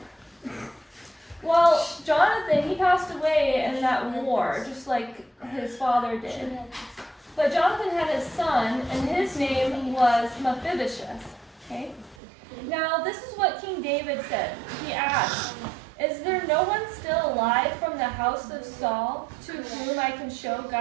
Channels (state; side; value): drops out; left; at 12.2 s